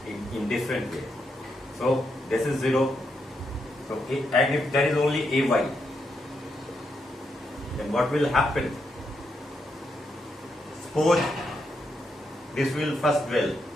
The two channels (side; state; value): both; normal; correlation 0.81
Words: in different way. So this is 0. So and if there is only ay, then what will happen? Suppose this will first dwell.